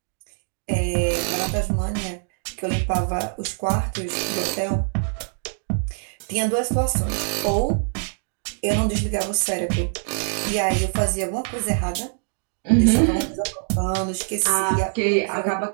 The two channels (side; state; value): left; silent; digital silence